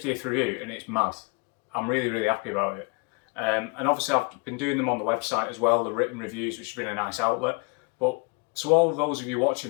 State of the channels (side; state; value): right; quieter; 29.5 dB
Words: review and it's mad. I'm really, really happy about it. And obviously I've been doing them on the website as well, the written reviews, which has been a nice outlet. But to all of those of you